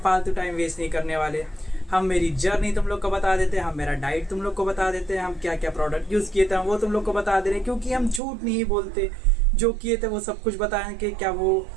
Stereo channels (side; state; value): left; drops out; at 8.2 s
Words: फालतू टाइम वेस्ट नहीं करने वाले। हम मेरी जर्नी तुम लोग को बता देते हैं, हम मेरा डाइट तुम लोग को बता देते हैं, हम क्या क्या प्रोडक्ट यूज़ किए थे वो तुम लोग को बता दे रहे हैं, क्योंकि हम झूठ नहीं बोलते। जो किए थे वो सब कुछ बताएं कि क्या वो